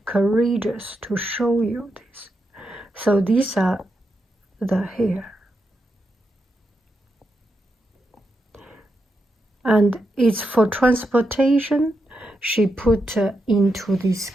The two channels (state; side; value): normal; both; correlation 0.85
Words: courageous to show you this. So these are the hair. And it's for transportation. She put into this